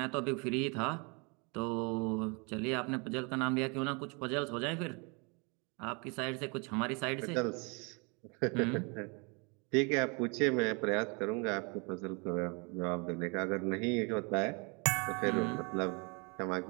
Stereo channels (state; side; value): quieter; left; 31.7 dB